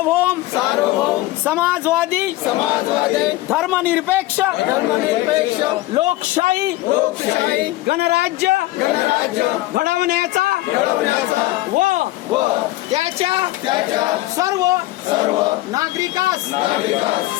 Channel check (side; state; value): right; quieter; 17.6 dB